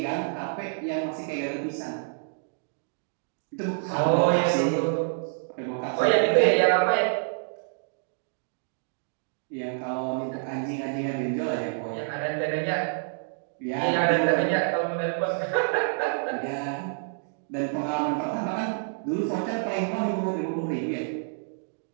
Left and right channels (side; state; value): left; silent; digital silence